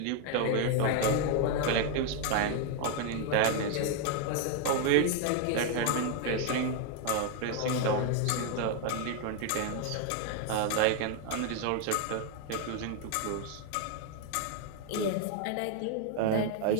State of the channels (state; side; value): different; both; correlation 0.01